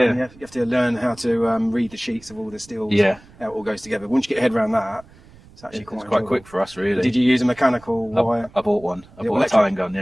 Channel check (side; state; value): right; noise; rumble, 24 dB below the sound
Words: And you have to learn how to read the sheets of all the steel. Yeah. How it all goes together. Once you get your head around that, it's actually quite quick for us, really. Did you use a mechanical wire? I bought one. I bought a tying gun,